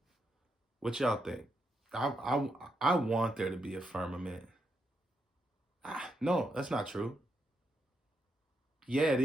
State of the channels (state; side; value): normal; both; correlation 0.82